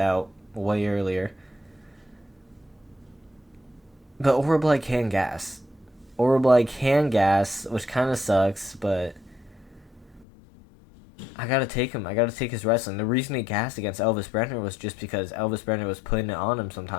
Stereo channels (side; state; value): right; drops out; at 10.2 s